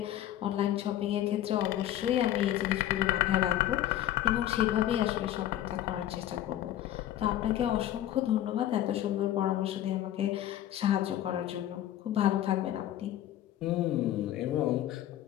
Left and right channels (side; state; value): right; quieter; 12.5 dB